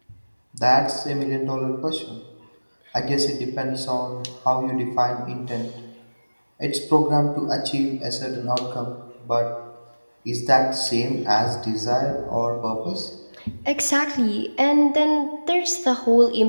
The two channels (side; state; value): both; inverted; correlation -1.00